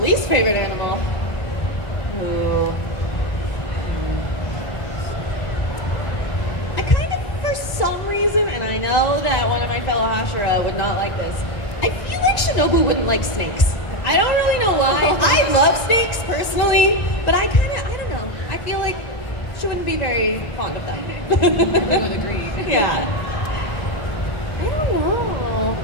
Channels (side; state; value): right; late; 1.9 ms